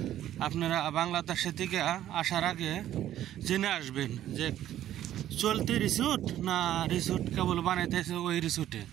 আপনারা বাংলাদেশের থেকে আসার আগে জেনে আসবেন যে চলতে রিসুট না রিসুট কেবল বানাইতেছে ওই রিসুটে।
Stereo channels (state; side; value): quieter; left; 12.2 dB